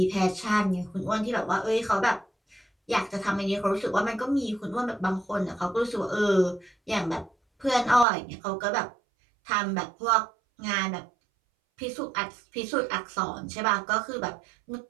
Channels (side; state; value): left; drops out; at 8.1 s